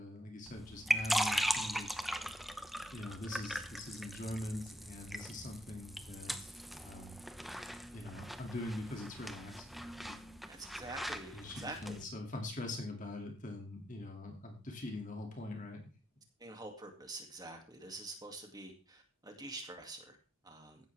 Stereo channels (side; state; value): both; normal; correlation 0.82